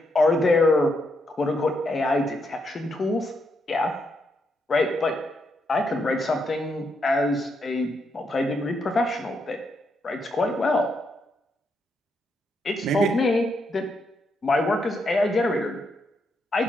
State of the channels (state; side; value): normal; both; correlation 0.79